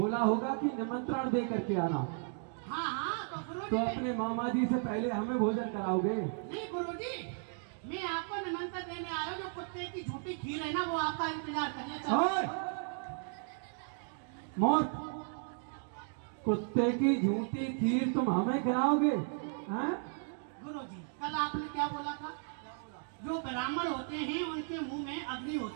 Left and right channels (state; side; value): silent; left; 54 dB below the other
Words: होगा कि निमंत्रण दे करके आना। हाँ हाँ, तो गुरुजी तो अपने मामा जी से पहले हमें भोजन कराओगे? नहीं गुरुजी, मैं आपको निमंत्रण देने आया हूँ। जो कुत्ते की झूठी खीर है ना, वो आपका इंतजार करने ओए! मौत, कुत्ते की झूठी खीर तुम हमें खिलाओगे? हैं? गुरुजी, कल आपने क्या बोला था? जो ब्राह्मण होते हैं उनके मुंह में अग्नि